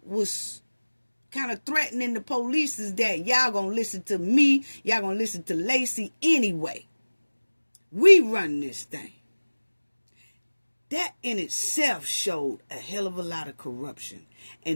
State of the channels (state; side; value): inverted; both; correlation -1.00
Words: was kind of threatening the police is that y'all gonna listen to me, y'all gonna listen to Lacy anyway. We run this thing. That in itself showed a hell of a lot of corruption,